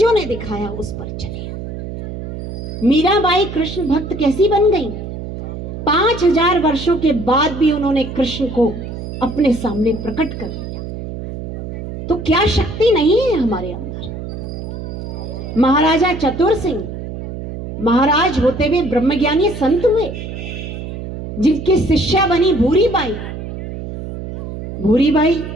ने दिखाया उस पर चले। मीराबाई कृष्ण भक्त कैसी बन गई? 5000 वर्षों के बाद भी उन्होंने कृष्ण को अपने सामने प्रकट कर लिया। तो क्या शक्ति नहीं है हमारे अंदर? महाराजा चतुर सिंह महाराज होते हुए ब्रह्मज्ञानी संत हुए, जिनकी शिष्या बनी भूरी बाई। भूरी बाई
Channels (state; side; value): noise; right; hum, 8 dB below the sound